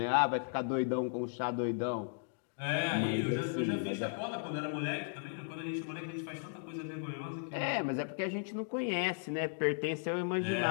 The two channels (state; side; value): silent; right; digital silence